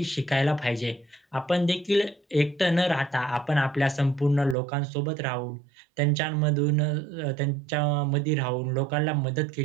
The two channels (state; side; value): drops out; left; at 4.5 s